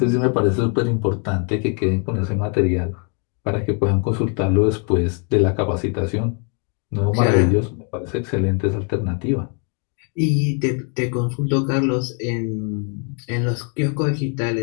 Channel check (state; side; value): quieter; right; 38.9 dB